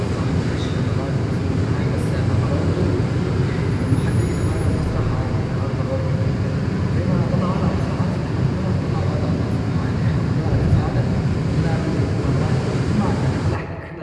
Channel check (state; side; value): identical; both; correlation 1.00